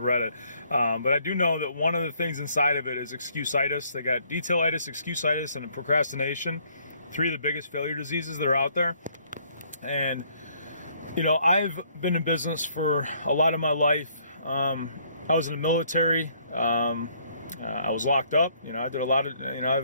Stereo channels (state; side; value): inverted; both; correlation -0.65